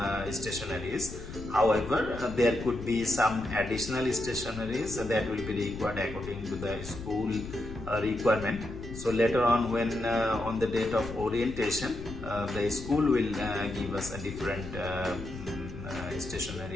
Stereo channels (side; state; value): left; noise; rumble, 11 dB below the sound